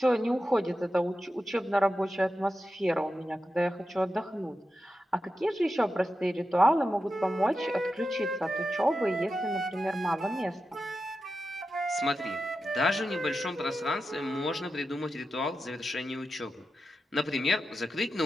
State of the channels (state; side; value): normal; both; correlation 0.90